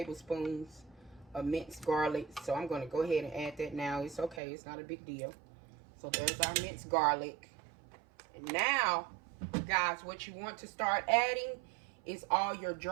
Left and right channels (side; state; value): left; drops out; at 4.4 s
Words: of minced garlic. So I'm going to go ahead and add that now. It's okay. It's not a big deal. So there's our minced garlic. And now, guys, what you want to start adding is all your